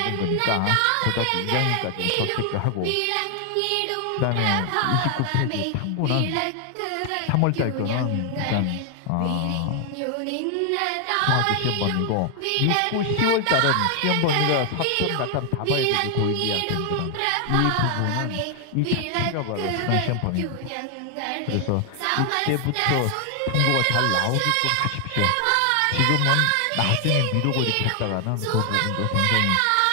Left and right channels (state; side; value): different; both; correlation 0.00